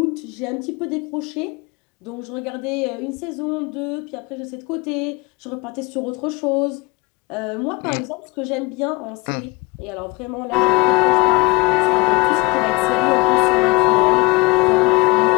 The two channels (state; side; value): quieter; right; 23.9 dB